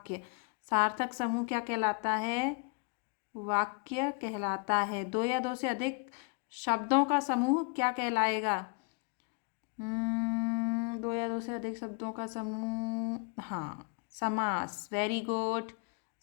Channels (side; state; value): right; quieter; 34.1 dB